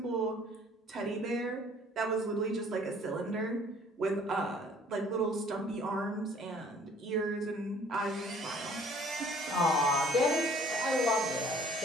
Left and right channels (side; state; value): both; normal; correlation 0.55